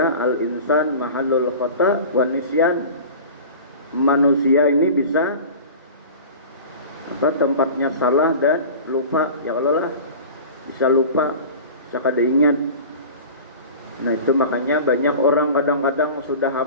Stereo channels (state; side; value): inverted; both; correlation -0.37